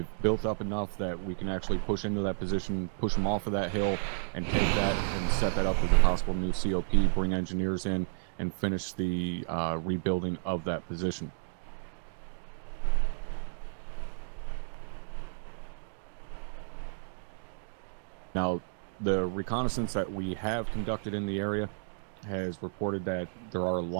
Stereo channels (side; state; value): left; silent; digital silence